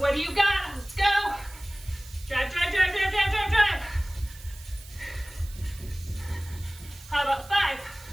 do you got? Let's go. Drive, drive, drive, drive, drive, drive, drive. How about 5,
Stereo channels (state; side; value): noise; right; hiss, 19 dB below the sound